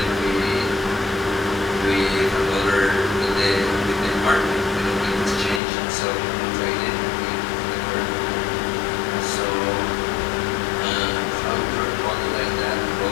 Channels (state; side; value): drops out; right; at 5.6 s